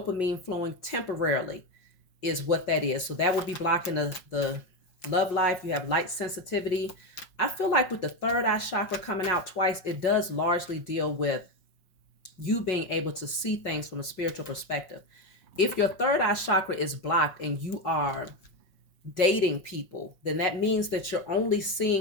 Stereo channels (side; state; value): right; late; 5.5 ms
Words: flowing temporarily is what that is. So that would be blocking the love life. You have light sensitivity. I feel like with the third eye chakra coming out twice, it does largely deal with you being able to see things from a spiritual perspective. If your third eye chakra is blocked and you are dating people, then that means that you're only